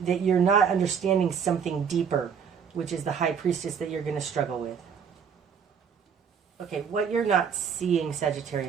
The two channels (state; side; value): quieter; left; 7.0 dB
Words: that you're not understanding something deeper, which is the High Priestess that you're going to struggle with. Okay, what you're not seeing,